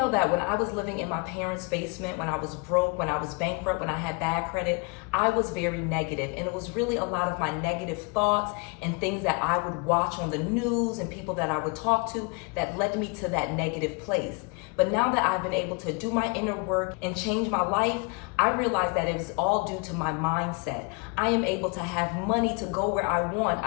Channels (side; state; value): right; quieter; 31.6 dB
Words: that when I was living in my parents' basement, when I was broke, when I was bankrupt, when I had bad credit, I was very negative. And it was really a lot of my negative thoughts and things that I would watch on the news and people that I would talk to that led me to that negative place. But now that I've been able to do my inner work and change my life, I realize that it is all due to my mindset. I am able to have money to go where I want.